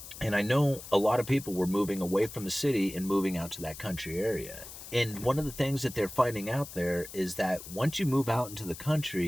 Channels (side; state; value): left; noise; hiss, 13 dB below the sound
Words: And I know a lot of people were moving away from the city and moving out to that country area. And one of the things that they're finding out there is that once you move out into the